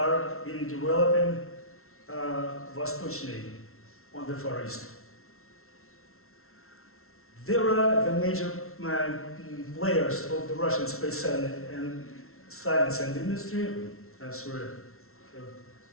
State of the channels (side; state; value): right; late; 0.62 ms